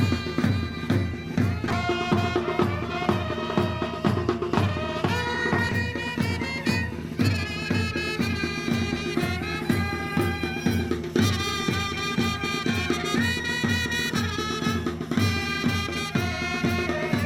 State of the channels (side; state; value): both; identical; correlation 1.00